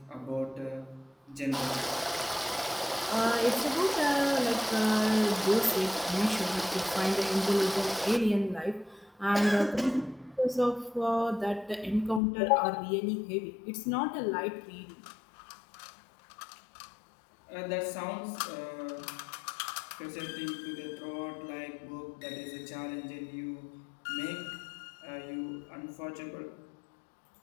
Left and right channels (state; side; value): drops out; right; at 12.2 s